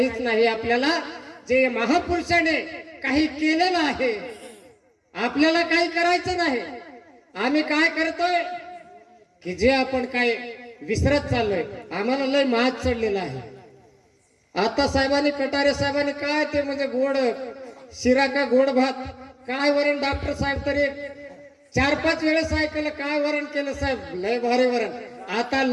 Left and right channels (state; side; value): identical; both; correlation 1.00